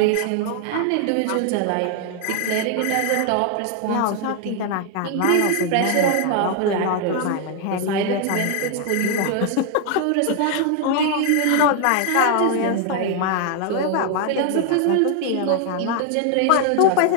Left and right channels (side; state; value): both; different; correlation 0.00